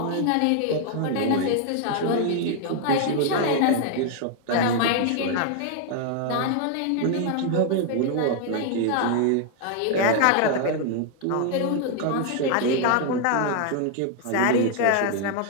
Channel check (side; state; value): both; different; correlation 0.00